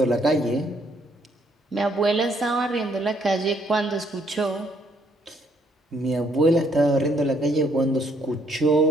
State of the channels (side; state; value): both; normal; correlation 0.68